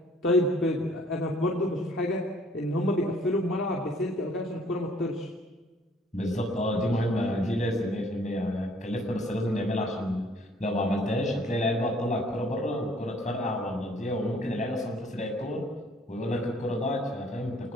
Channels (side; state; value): both; normal; correlation 0.59